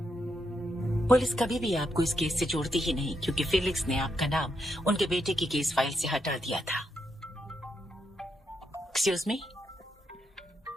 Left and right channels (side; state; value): both; normal; correlation 0.81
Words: पुलिस कभी भी आपको इस केस से जोड़ती ही नहीं क्योंकि फेलिक्स ने आपका नाम उनके बेटे की केस फाइल से हटा दिया था। Excuse me.